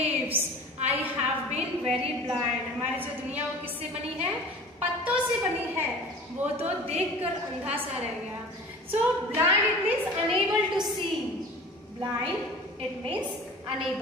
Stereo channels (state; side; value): normal; both; correlation 0.40